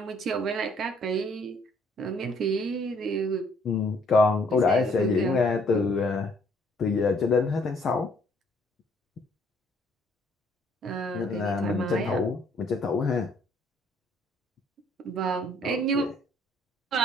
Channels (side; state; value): both; normal; correlation 0.64